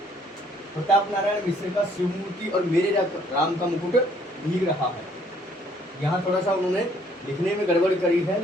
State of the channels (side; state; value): both; normal; correlation 0.63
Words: प्रताप नारायण मिश्र का शिवमूर्ति और मेरे राम का मुकुट भीग रहा है। यहाँ थोड़ा सा उन्होंने लिखने में गड़बड़ करी है,